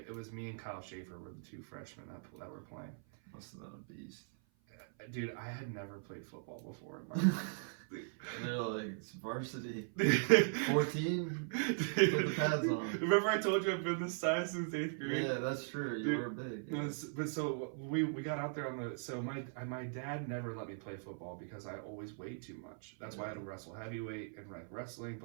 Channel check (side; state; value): left; silent; 52 dB below the other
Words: it was me and Kyle Schaefer were the two freshmen that were playing. Must have been a beast. Dude, I had never played football before in my life. And they're like, it's varsity. 14? Put the pads on. Remember I told you I've been this size since 8th grade? Yeah, that's true. You were big. Yeah. But so we got out there so my dad never let me play football because I always weighed too much. That's why I had to wrestle heavyweight and wrestling,